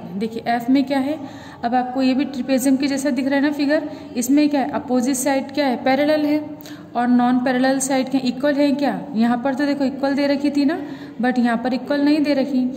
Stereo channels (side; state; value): both; identical; correlation 1.00